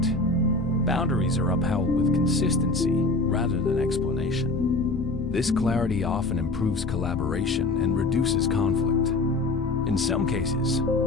Boundaries are upheld with consistency rather than explanation. This clarity often improves collaboration and reduces conflict. In some cases,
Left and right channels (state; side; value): quieter; right; 3.1 dB